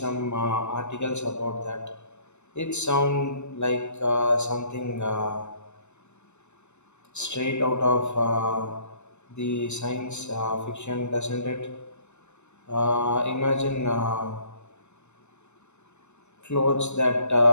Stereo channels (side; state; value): right; late; 0.82 ms